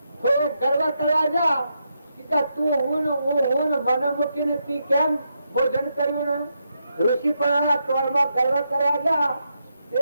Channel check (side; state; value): both; inverted; correlation -0.82